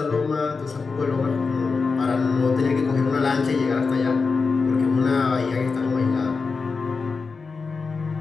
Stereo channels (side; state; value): right; quieter; 4.6 dB